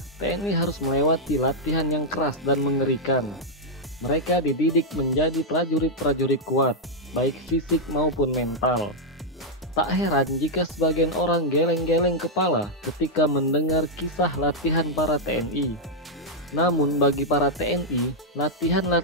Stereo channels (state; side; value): normal; both; correlation -0.04